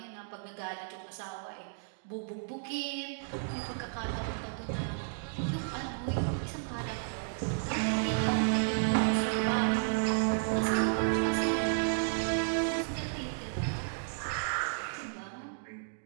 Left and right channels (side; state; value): left; silent; digital silence